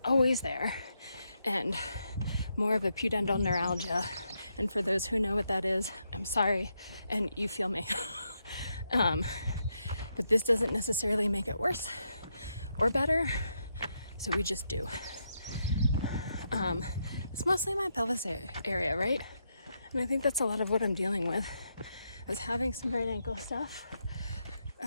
always there, and more of a pudendal neuralgia. And for those who know what that is, I'm sorry, and you feel me. But this doesn't necessarily make it worse or better, so we just do. It's mostly my pelvis area, right? And I think that's a lot of what I'm dealing with. I was having some right ankle stuff.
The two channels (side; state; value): both; inverted; correlation -0.81